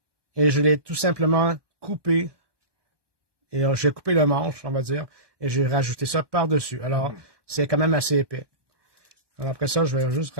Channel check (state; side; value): late; left; 1.2 ms